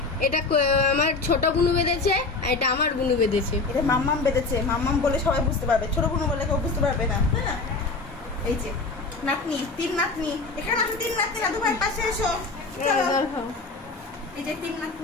এটা আমার ছোট বুনু বেঁধেছে, আর এটা আমার বুনু বেঁধেছে। এটা মাম্মাম বেঁধেছে, মাম্মাম বলে সবাই বুঝতে পারবে, ছোট বোন বলে কেউ বুঝতে পারবে না। হ্যাঁ এই যে নাতনি, তিন নাতনি, এখানে আছে তিন নাতনি, দাদু ভাইয়ের পাশে এসো। চলো এই যে তিন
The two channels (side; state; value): right; quieter; 3.8 dB